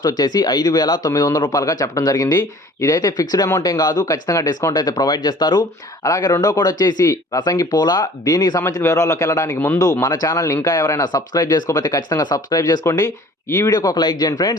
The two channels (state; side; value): normal; both; correlation 0.50